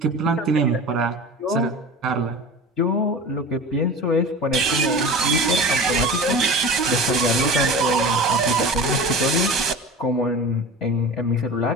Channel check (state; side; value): normal; both; correlation 0.34